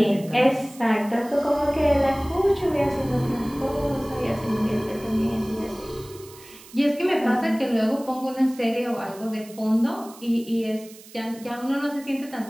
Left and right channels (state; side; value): noise; right; hiss, 20 dB below the sound